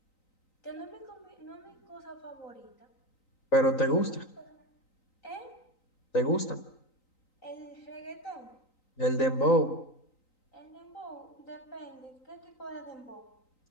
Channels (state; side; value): late; right; 3.9 ms